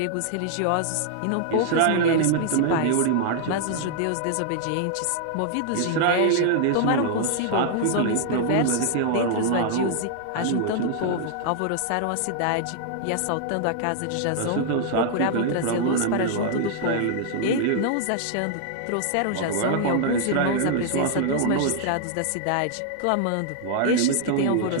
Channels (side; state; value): both; different; correlation -0.01